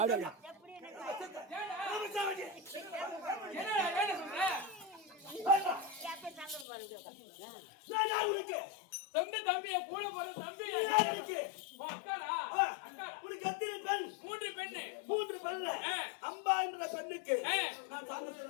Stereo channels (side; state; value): right; drops out; at 6.7 s